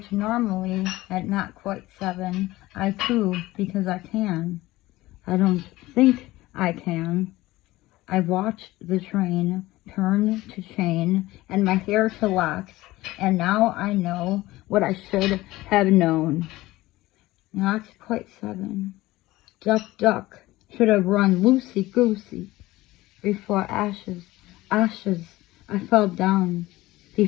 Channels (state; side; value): quieter; right; 18.1 dB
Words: normally, at not quite 7, I coo because I can. I don't think I can. I watched the train turn to chain and my hair to locks, and now I know what I should have known. Not quite 7. Duck, should have run loosey-goosey. Before ashes, I fell down.